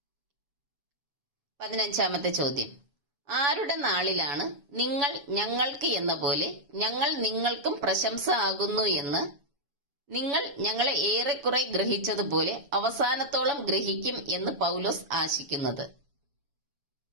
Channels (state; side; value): late; left; 7.0 ms